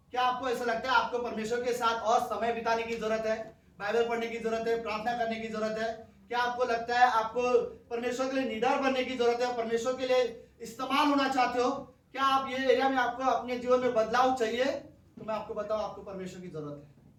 क्या आपको ऐसा लगता है आपको परमेश्वर के साथ और समय बिताने की जरूरत है, बाइबल पढ़ने की जरूरत है, प्रार्थना करने की जरूरत है? क्या आपको लगता है आपको परमेश्वर के लिए निडर बनने की जरूरत है, परमेश्वर के लिए इस्तेमाल होना चाहते हो? क्या आप ये एरिया में आपको अपने जीवन में बदलाव चाहिए? तो मैं आपको बताऊं, आपको परमेश्वर की जरूरत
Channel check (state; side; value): identical; both; correlation 1.00